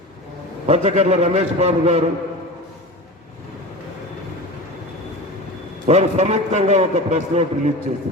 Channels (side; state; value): both; normal; correlation 0.30